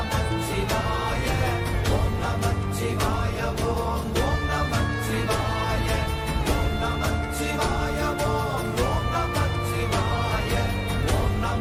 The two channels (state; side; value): identical; both; correlation 1.00